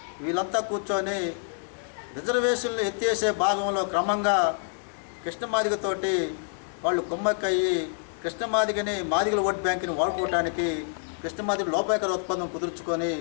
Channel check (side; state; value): right; silent; digital silence